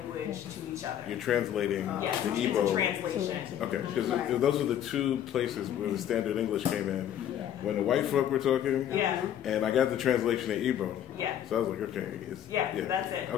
to each other. You're translating yes, the it's Igbo. a translation. Okay, because those are the two places where the standard English came in. When the white folk were talking, and I got the translation in Igbo. Yeah. So I was like, okay, that's it.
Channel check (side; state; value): right; quieter; 10.4 dB